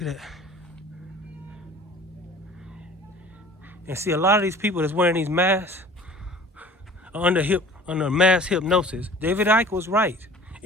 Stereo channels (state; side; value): normal; both; correlation 0.45